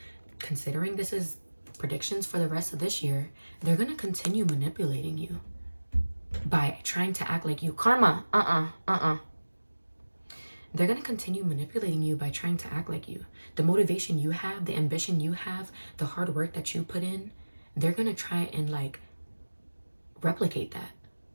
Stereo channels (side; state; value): both; inverted; correlation -1.00